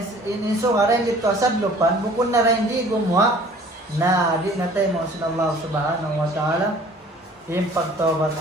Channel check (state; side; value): normal; both; correlation 0.51